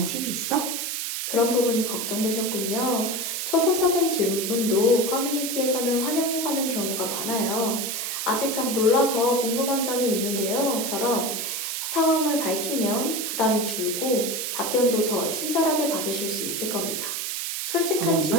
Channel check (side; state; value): right; noise; hiss, 3 dB below the sound